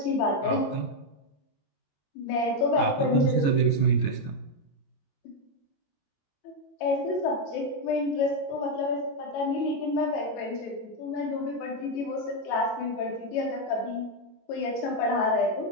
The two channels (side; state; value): right; late; 22 ms